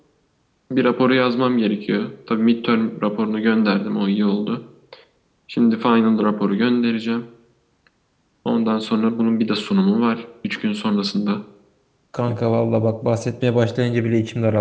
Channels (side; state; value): both; identical; correlation 1.00